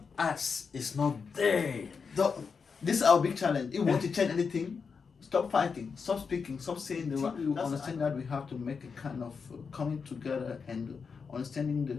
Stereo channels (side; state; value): right; quieter; 5.6 dB